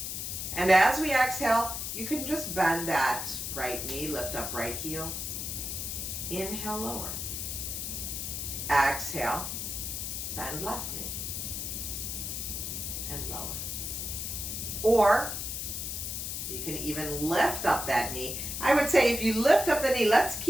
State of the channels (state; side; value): noise; left; hiss, 4 dB below the sound